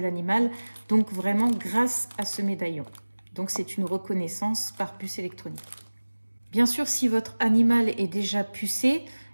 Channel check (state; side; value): inverted; both; correlation -1.00